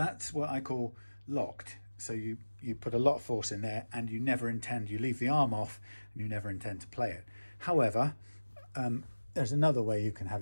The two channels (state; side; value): inverted; both; correlation -1.00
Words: what I call locked. So you put a lot of force in there, and you never intend, you leave the arm off, and you never intend to play it. However, there's another way you can